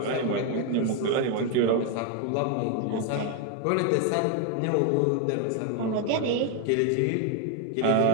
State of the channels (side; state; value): both; different; correlation 0.01